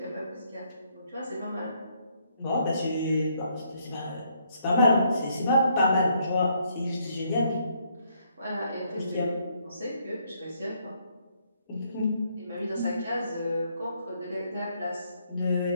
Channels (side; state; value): both; inverted; correlation -0.71